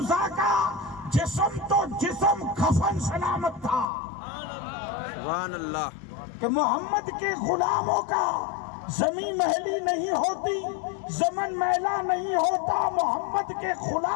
زا کا جسم تو جسم کفن سلامت تھا. سبحان اللہ. کہ محمد کے غلاموں کا زمین محلی نہیں ہوتی زمن میلا نہیں ہوتا محمد کے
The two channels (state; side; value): drops out; right; at 3.9 s